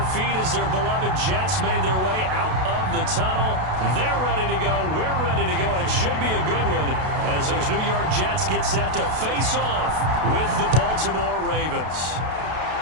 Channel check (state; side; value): late; left; 32 ms